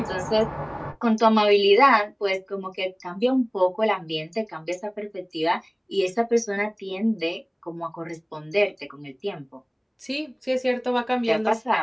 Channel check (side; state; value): both; identical; correlation 1.00